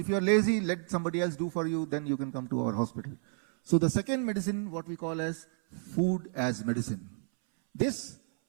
you're lazy, let somebody else do for you, then you can come to our hospital. So the second medicine, what we call as food as medicine. This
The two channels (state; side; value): silent; left; 57 dB below the other